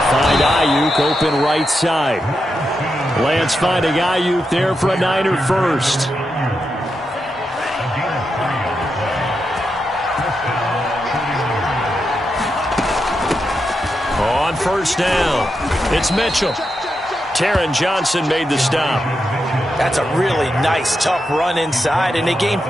find Ayuk open right side. Lance finding Ayuk there for a Niner first. On 1st down, it's Mitchell. Taron Johnson made the stop. That's a really nice, tough run inside, and they gained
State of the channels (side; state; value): both; normal; correlation 0.86